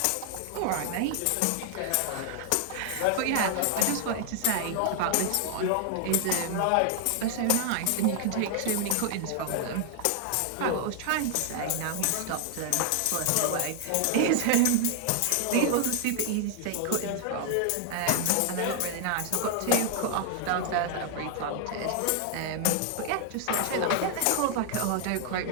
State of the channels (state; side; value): different; both; correlation 0.00